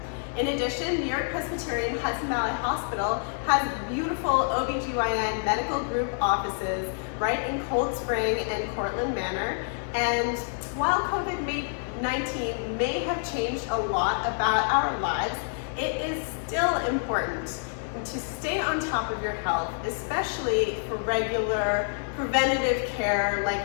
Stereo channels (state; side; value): silent; right; digital silence